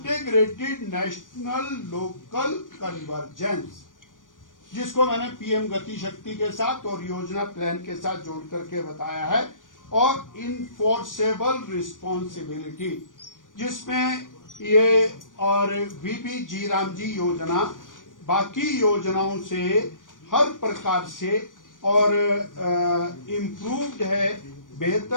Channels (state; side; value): late; right; 0.88 ms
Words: नेशनल लोकल कन्वर्जेंस, जिसको मैंने पीएम गति शक्ति के साथ और योजना प्लान के साथ जोड़ करके बताया है, और इनफोर्सेबल रिस्पॉन्सिबिलिटी, जिसमें ये और वीपी जी राम जी योजना बाकी योजनाओं से हर प्रकार से और इम्प्रूव्ड है,